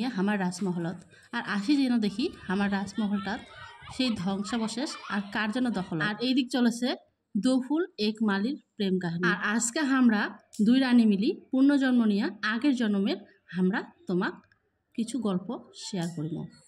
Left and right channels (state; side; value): identical; both; correlation 1.00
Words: আমার রাজমহলত। আর আসি যেন দেখি আমার রাজমহলটা সেই ধ্বংসাবশেষ আর কার জন্য দখল। আর এই দিক চলেছে দোফুল এক মালির প্রেম কাহিনী। আর আজকে আমরা দুই রানী মিলি পুনর্জন্ম নিয়ে আগের জন্মের আমরা তোমাক কিছু গল্প শেয়ার করিব।